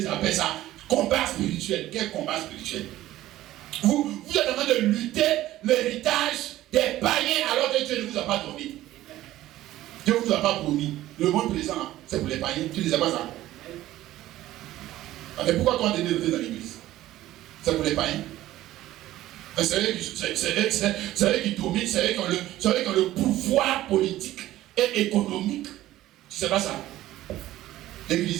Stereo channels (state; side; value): quieter; left; 14.9 dB